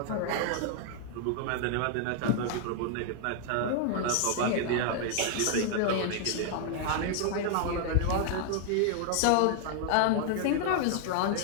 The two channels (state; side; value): different; both; correlation 0.00